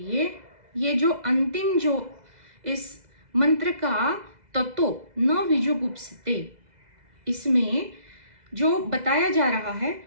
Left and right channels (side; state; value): left; late; 2.0 ms